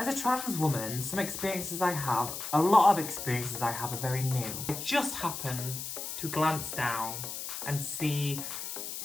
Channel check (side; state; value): left; noise; hiss, 6 dB below the sound